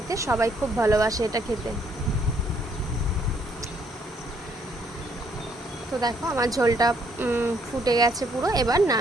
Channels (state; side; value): normal; both; correlation 0.68